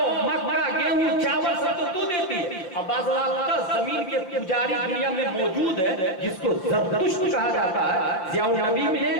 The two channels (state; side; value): late; right; 5.6 ms